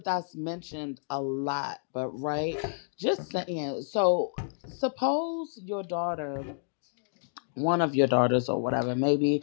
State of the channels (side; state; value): right; silent; digital silence